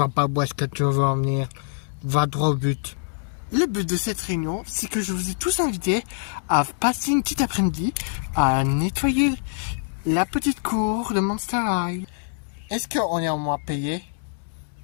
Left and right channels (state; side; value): silent; right; digital silence